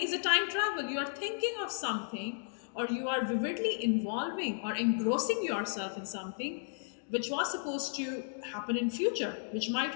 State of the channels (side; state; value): right; silent; digital silence